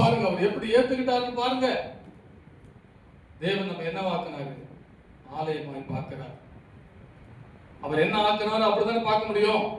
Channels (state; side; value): identical; both; correlation 1.00